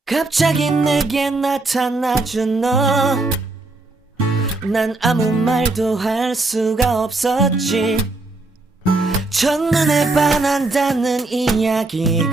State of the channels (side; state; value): left; quieter; 3.2 dB